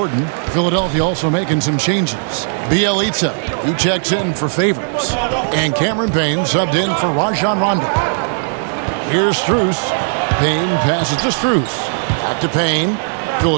Philadelphia also making some changes. Bjelica, who checks in for Favors. And Cameron Payne subbed in for Rajon Rondo. Here's Strus. Payne passes to Strus. Back to Payne.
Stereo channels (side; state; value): left; silent; 65 dB below the other